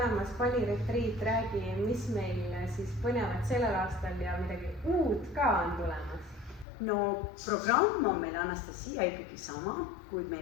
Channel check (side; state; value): right; drops out; at 6.7 s